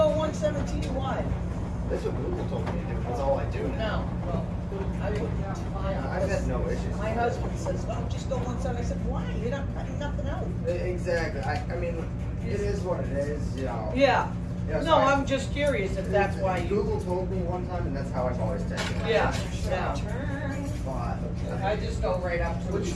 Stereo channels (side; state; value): both; identical; correlation 1.00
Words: 117 wide? That's what Google told me to do. That's all I do now. No. Well, I wouldn't. Yeah, I've had no issues. My husband says, "Oh, just go 170." I said, "Why? You're not cutting nothing out." Exactly. I mean, it is what it is. You know. Yeah. Yeah, so No, I- I'm just curious if that's why you. Google told me one time, and that's how I've always taken it. Yeah. Yeah. But I just go right up to. Which